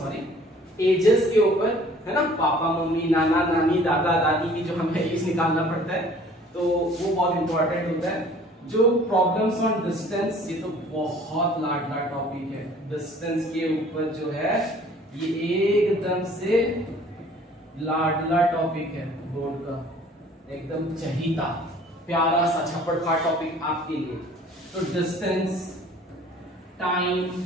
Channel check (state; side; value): normal; both; correlation 0.52